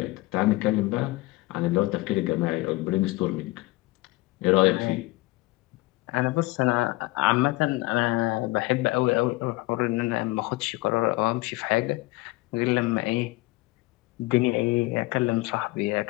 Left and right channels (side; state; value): right; quieter; 20.9 dB